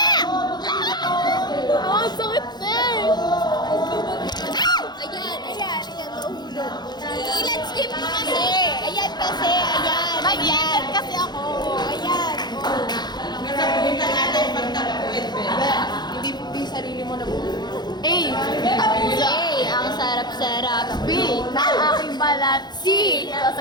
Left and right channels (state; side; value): late; right; 0.21 ms